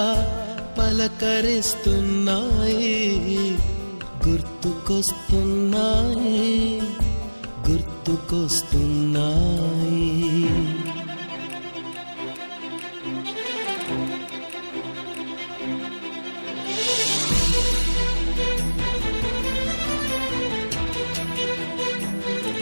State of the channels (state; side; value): inverted; both; correlation -1.00